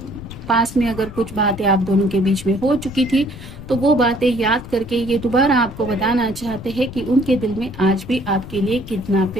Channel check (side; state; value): left; noise; rumble, 13 dB below the sound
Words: पास में अगर कुछ बातें आप दोनों के बीच में हो चुकी थी तो वो बातें याद करके ये दोबारा आपको बताना चाहते हैं कि उनके दिल में आज भी आपके लिए कितना